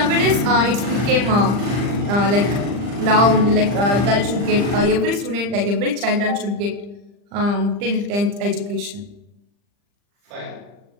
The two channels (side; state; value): left; late; 40 ms